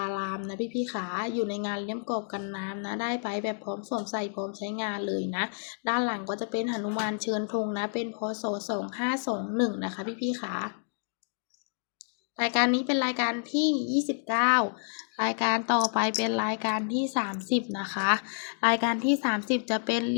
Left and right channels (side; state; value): right; silent; digital silence